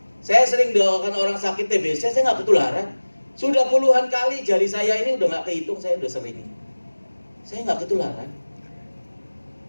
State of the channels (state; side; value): inverted; both; correlation -1.00